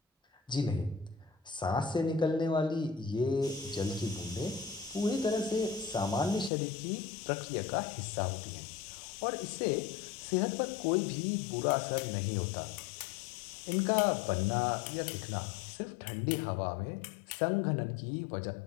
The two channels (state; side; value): drops out; right; at 6.5 s